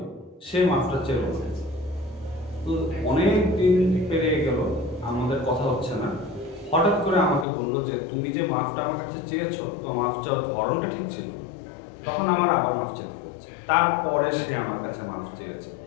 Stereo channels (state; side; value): drops out; right; at 7.5 s